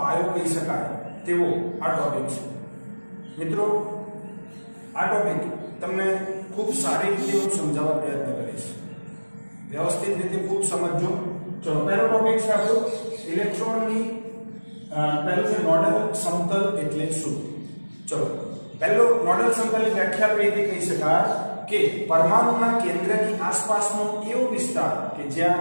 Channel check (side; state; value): both; inverted; correlation -1.00